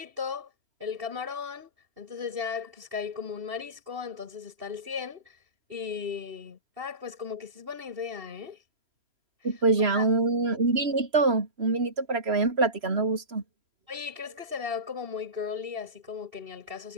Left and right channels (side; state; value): left; late; 3.0 ms